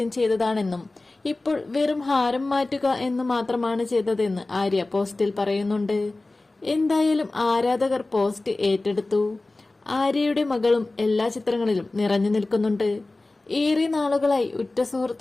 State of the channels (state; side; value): quieter; right; 3.0 dB